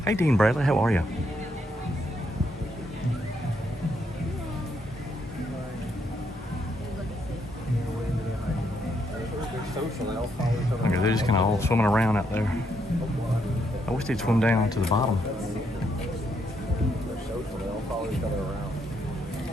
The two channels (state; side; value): normal; both; correlation 0.76